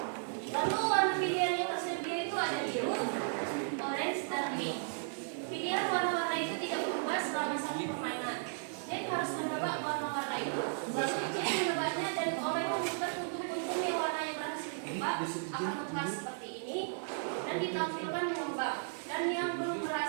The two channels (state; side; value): silent; left; 54 dB below the other